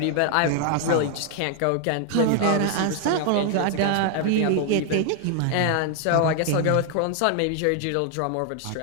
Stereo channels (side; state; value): both; different; correlation 0.00